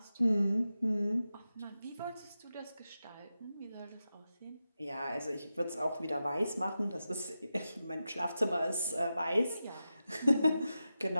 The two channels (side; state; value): both; inverted; correlation -0.91